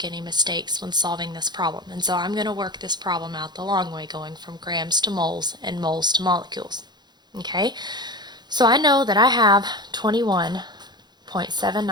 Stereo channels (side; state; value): left; late; 0.21 ms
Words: any mistakes when solving this problem. And so I'm going to work this problem out the long way, going from grams to moles and moles to molecules. Okay, so I know that I have